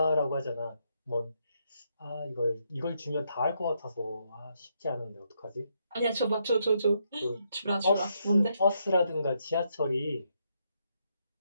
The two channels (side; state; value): both; inverted; correlation -0.78